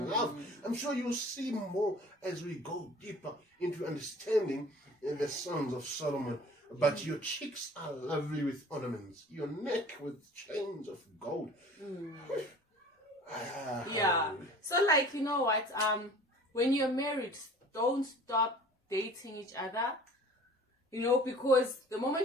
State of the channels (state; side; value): normal; both; correlation 0.46